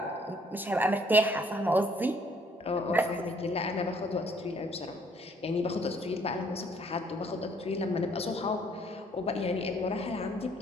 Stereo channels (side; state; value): both; normal; correlation 0.63